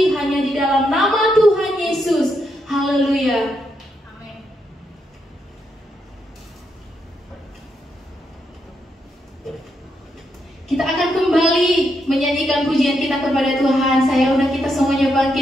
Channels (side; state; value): both; normal; correlation 0.80